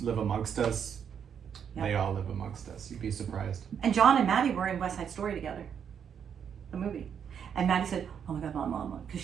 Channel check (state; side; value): quieter; left; 7.8 dB